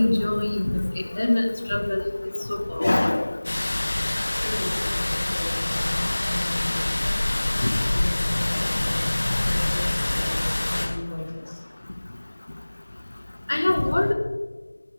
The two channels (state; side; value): inverted; both; correlation -1.00